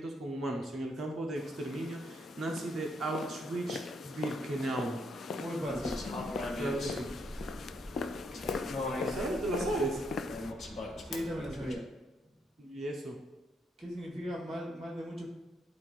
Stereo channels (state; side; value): normal; both; correlation 0.74